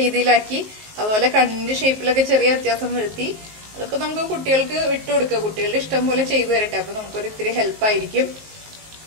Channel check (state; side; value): late; left; 19 ms